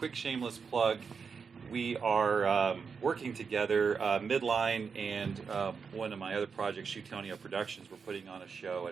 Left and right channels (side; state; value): left; quieter; 5.7 dB